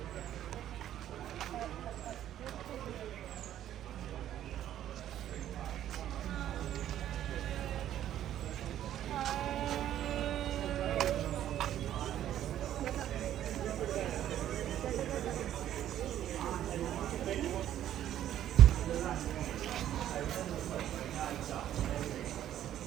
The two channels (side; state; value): left; quieter; 11.6 dB